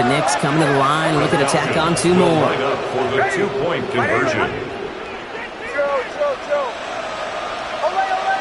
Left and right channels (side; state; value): both; identical; correlation 1.00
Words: Knicks coming to the line, looking to tack on 2 more. Line up for the 2-point conversion.